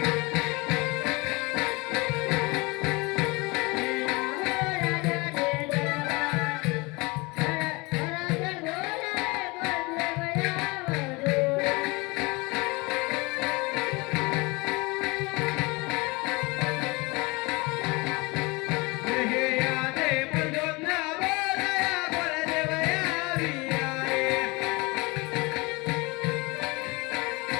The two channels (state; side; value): quieter; right; 25.4 dB